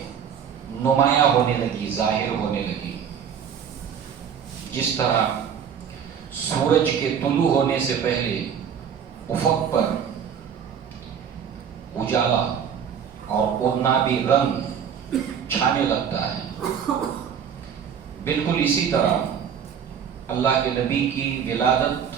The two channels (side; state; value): left; quieter; 7.8 dB